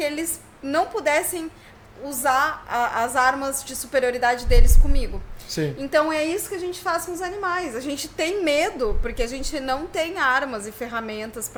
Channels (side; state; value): both; identical; correlation 1.00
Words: eles não pudessem usar as armas de superioridade deles comigo. Sim. Então é isso que a gente faz com os animais. A gente tem medo porque a gente não tem armas e ferramentas